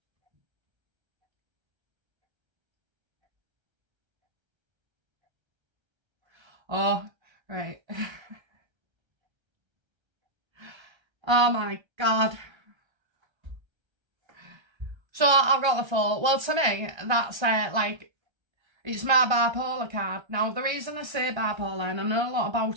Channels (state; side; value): late; left; 1.3 ms